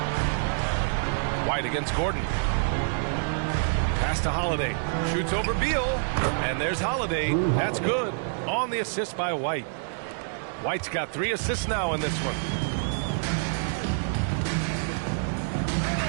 White against Gordon. Pass to Holiday. Shoots over Beal. And there's Holiday. That's good. On the assist by White. White's got 3 assists now in this one.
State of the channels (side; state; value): left; silent; digital silence